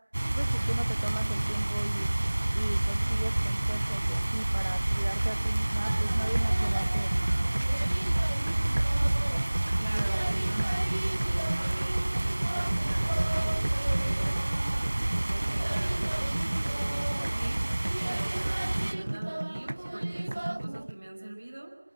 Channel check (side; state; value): both; inverted; correlation -1.00